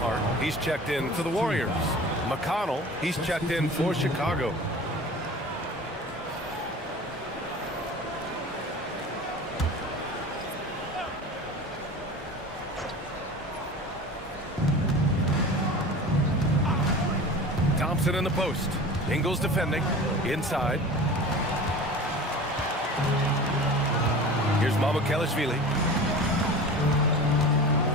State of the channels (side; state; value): both; normal; correlation 0.36